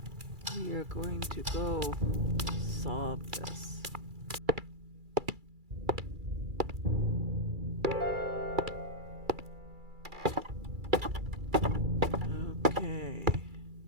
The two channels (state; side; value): late; left; 2.3 ms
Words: We are going to go solve this. Okay.